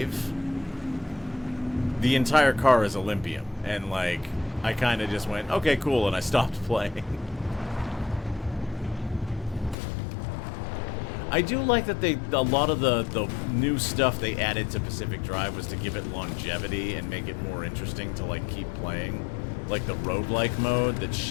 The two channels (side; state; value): right; drops out; at 9.8 s